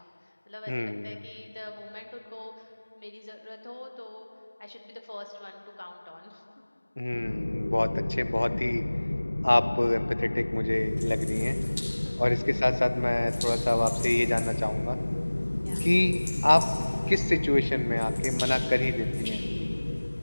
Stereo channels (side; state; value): both; inverted; correlation -1.00